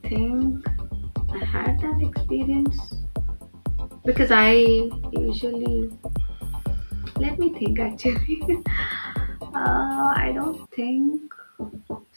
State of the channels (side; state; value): both; inverted; correlation -1.00